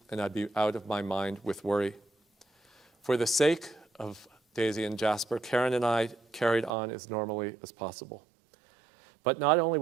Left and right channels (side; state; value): left; drops out; at 6.7 s